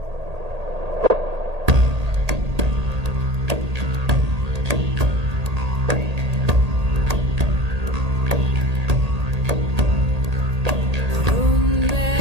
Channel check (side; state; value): left; late; 1.8 ms